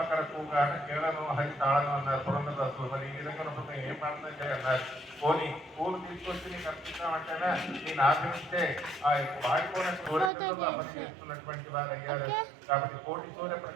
కూగాట కేళను హరి తాళను అన్నారు పురందరదాసులు. మరి ఈ విధంగా ఉన్నప్పుడు ఏం ప్రార్థన చేయాలన్నారు. పోనీ పూలు తీసుకొచ్చి నీకు అర్పిస్తామంటేనా నేను ఆశ్రమిస్తే ఆ వాడిపోయిన కోరికల్లో అమలు చేస్తున్నటువంటి వారు అయ్యారు. కాబట్టి కోటి సూర్య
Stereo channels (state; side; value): drops out; left; at 10.3 s